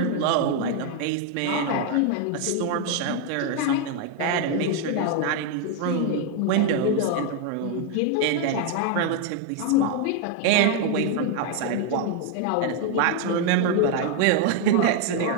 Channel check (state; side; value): different; both; correlation 0.01